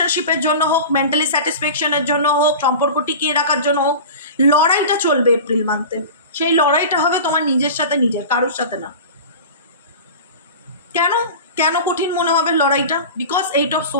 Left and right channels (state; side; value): inverted; both; correlation -0.33